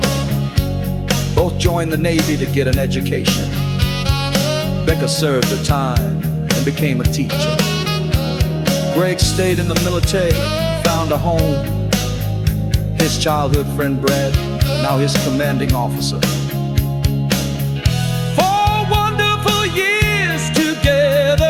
Both joined the Navy to get an education. Becca served her time and became a teacher. Greg stayed in the military, found a home. His childhood friend Brad, now his commanding officer. 4 wonderful years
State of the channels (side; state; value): both; identical; correlation 1.00